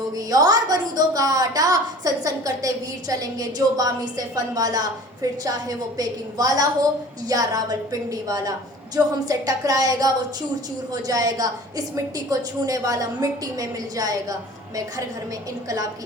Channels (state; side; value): normal; both; correlation 0.45